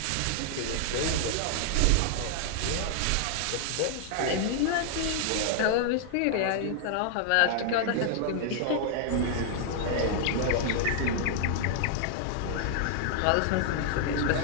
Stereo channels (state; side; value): different; both; correlation 0.00